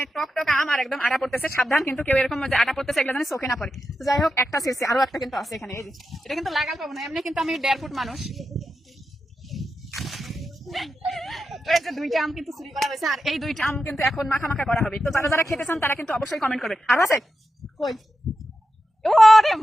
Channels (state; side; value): normal; both; correlation 0.89